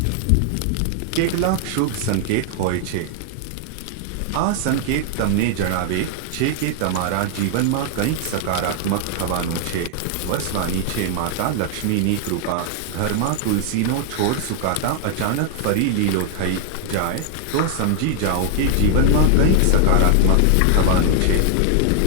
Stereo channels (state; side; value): different; both; correlation 0.00